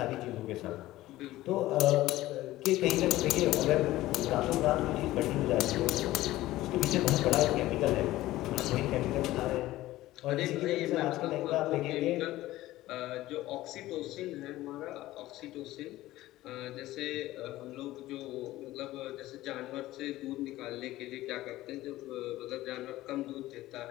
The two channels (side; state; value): right; quieter; 16.4 dB